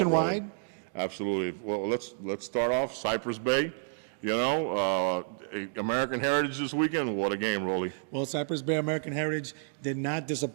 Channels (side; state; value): left; silent; digital silence